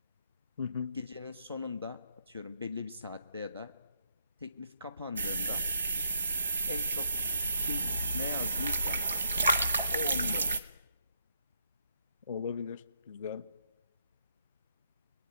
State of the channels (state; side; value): inverted; both; correlation -0.75